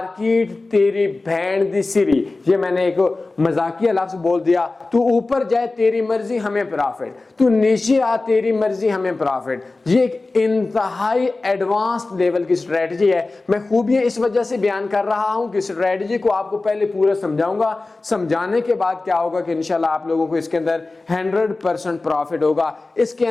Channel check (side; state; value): right; quieter; 3.3 dB